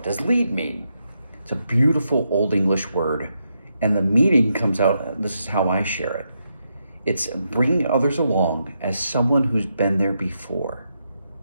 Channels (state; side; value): inverted; both; correlation -0.82